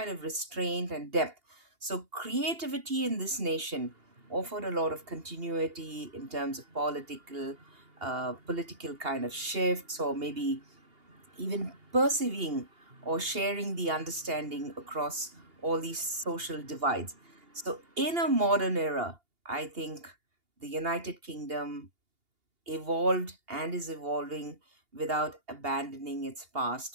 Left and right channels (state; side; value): late; left; 2.8 ms